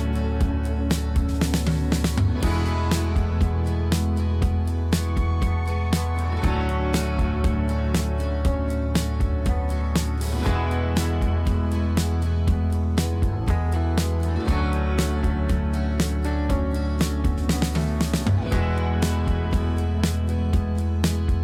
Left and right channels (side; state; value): both; identical; correlation 1.00